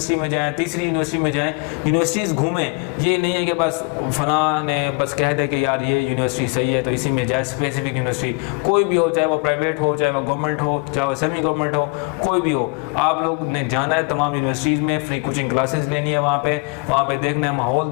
में जाएं, तीसरी यूनिवर्सिटी में जाएं, यूनिवर्सिटीज़ घूमें। ये नहीं है कि बस फलां ने बस कह दे कि यार ये यूनिवर्सिटी सही है तो इसी में जाए। स्पेसिफिक यूनिवर्सिटी कोई भी हो, चाहे वो प्राइवेट हो, चाहे वो गवर्नमेंट हो, चाहे वो सेमी गवर्नमेंट हो, कोई भी हो, आप लोग ने जाना है तमाम यूनिवर्सिटीज़ में, फ्री कोचिंग क्लासेस लेनी है वहाँ पे देखना है, माहौल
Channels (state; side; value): quieter; right; 33.5 dB